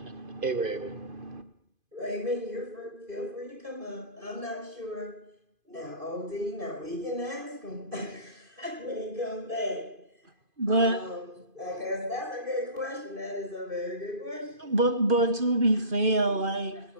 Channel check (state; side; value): late; left; 2.5 ms